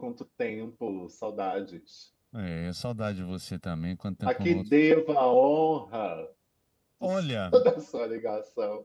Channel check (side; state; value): both; identical; correlation 1.00